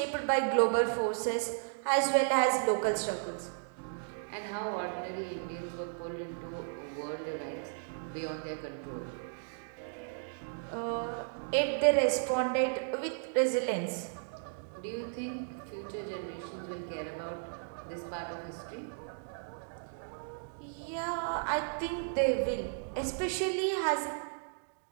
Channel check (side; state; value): left; silent; digital silence